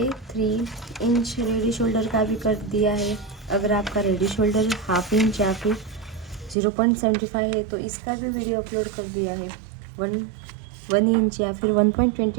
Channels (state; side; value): drops out; left; at 6.6 s